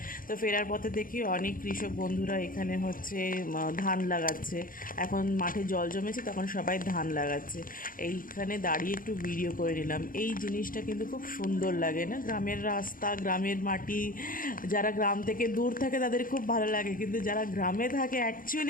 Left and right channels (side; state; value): right; late; 0.40 ms